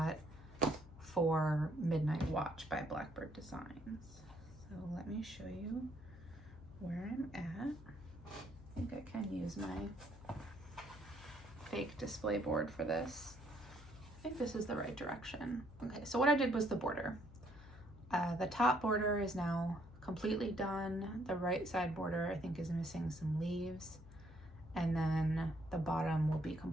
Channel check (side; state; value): left; noise; hum, 18 dB below the sound